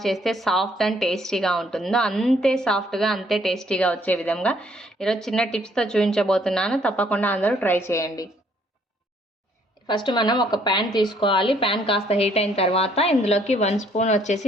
చేస్తే సాఫ్ట్ అండ్ టేస్టీగా ఉంటుందో అంతే సాఫ్ట్గా అంతే టేస్టీగా వచ్చే విధంగా ఈరోజు చిన్న టిప్స్తో చూపించబోతున్నాను. తప్పకుండా అందరూ ట్రై చేయండి. ఫస్ట్ మనం ఒక ప్యాన్ తీసుకోవాలి. ప్యాన్ కాస్త హీట్ అయిన తర్వాత ఇందులోకి 1 స్పూన్ వచ్చేసి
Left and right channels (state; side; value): normal; both; correlation 0.65